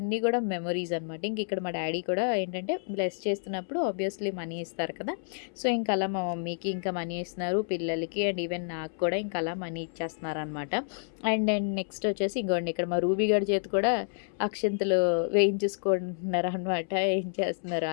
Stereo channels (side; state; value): right; silent; 58 dB below the other